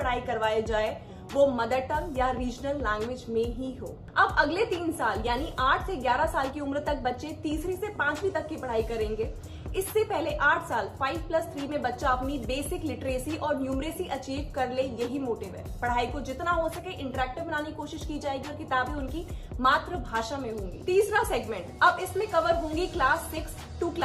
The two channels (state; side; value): identical; both; correlation 1.00